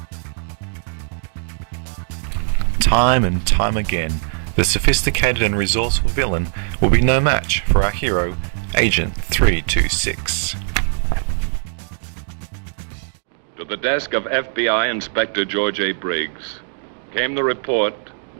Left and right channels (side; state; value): left; silent; digital silence